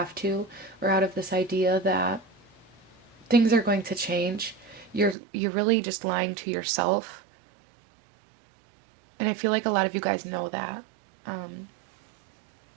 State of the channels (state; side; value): drops out; left; at 5.2 s